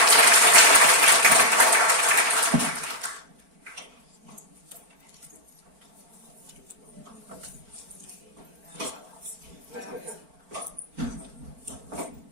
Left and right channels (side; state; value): left; late; 4.4 ms